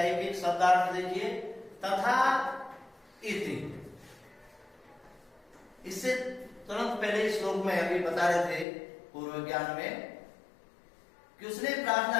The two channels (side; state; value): right; drops out; at 8.7 s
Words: एक एक शब्दार्थ देखिए। तथा इति, इससे तुरंत पहले श्लोक में अभी बता रहे थे पूर्व ज्ञान में कि उसने प्रार्थना